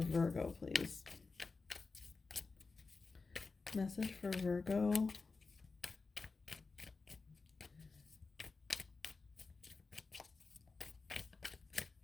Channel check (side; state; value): right; quieter; 4.2 dB